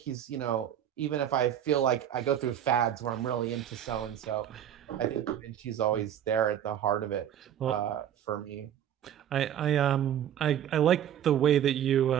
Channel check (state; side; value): quieter; left; 10.2 dB